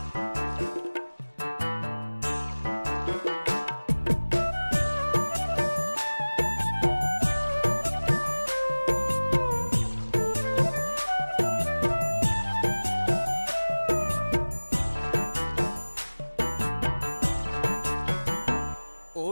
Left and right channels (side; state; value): both; inverted; correlation -1.00